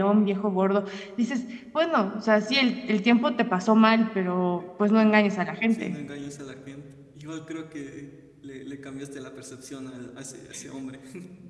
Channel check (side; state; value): both; identical; correlation 1.00